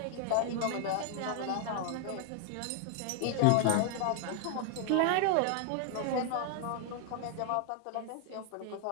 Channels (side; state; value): both; different; correlation -0.01